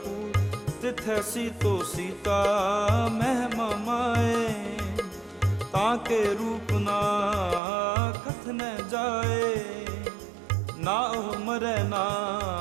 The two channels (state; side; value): drops out; left; at 7.6 s